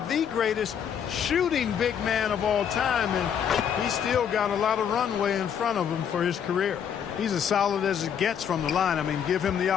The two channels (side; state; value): right; quieter; 8.3 dB